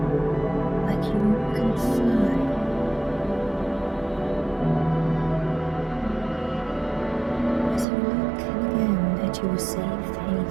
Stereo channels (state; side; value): drops out; left; at 7.9 s